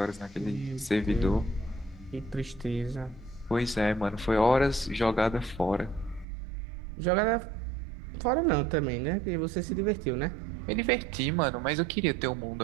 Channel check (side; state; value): left; drops out; at 6.2 s